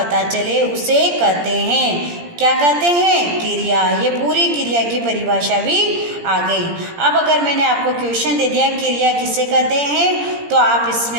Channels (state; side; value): late; left; 17 ms